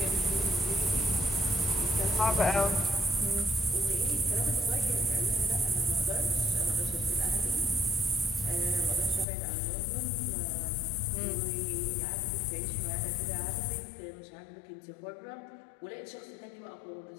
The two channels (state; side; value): drops out; right; at 9.2 s